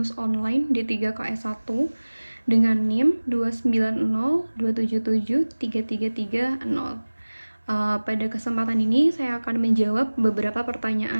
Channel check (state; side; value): inverted; both; correlation -1.00